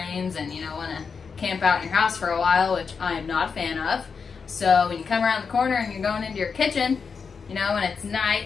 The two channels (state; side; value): quieter; right; 5.6 dB